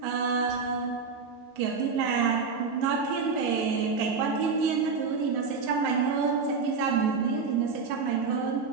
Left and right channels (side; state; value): left; quieter; 5.1 dB